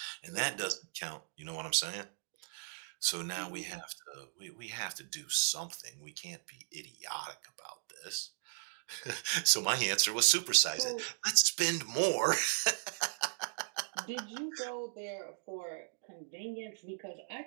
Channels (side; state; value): left; silent; digital silence